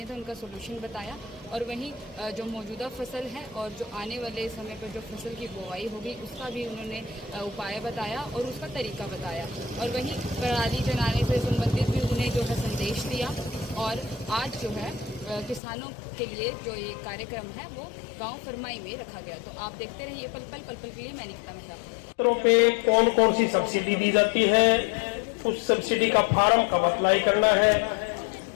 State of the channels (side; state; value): right; drops out; at 15.6 s